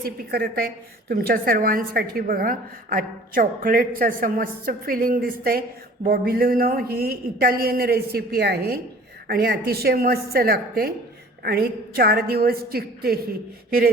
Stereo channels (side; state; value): both; normal; correlation 0.48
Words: करत आहे तुमच्या सर्वांसाठी। बघा, आज चॉकलेटचं असं मस्त फिलिंग दिसतंय। बॉबिलिनो ही इटालियन रेसिपी आहे आणि अतिशय मस्त लागते आणि 4 दिवस टिकते। ही